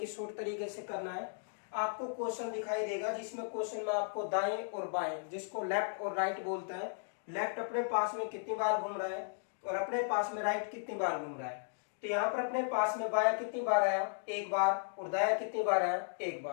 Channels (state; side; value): silent; right; digital silence